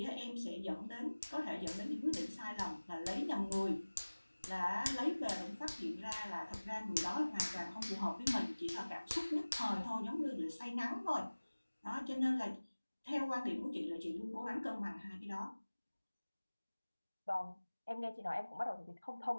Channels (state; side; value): inverted; both; correlation -1.00